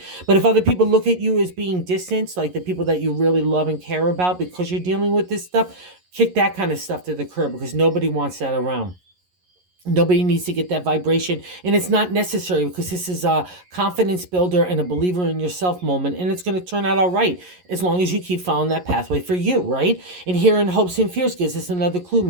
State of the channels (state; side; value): late; left; 11 ms